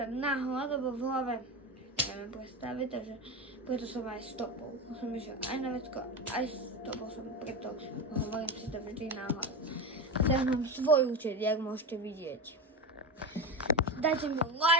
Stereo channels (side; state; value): both; normal; correlation 0.20